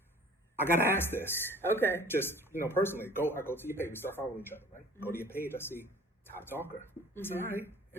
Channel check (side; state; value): both; normal; correlation 0.48